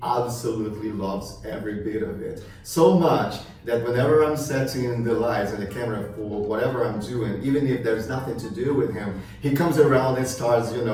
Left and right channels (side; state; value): both; identical; correlation 1.00